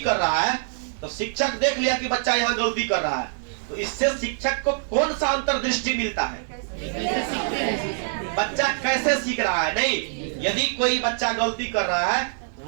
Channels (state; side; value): silent; left; digital silence